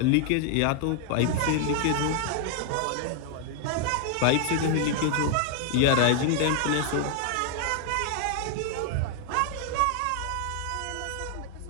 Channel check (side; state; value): both; different; correlation 0.00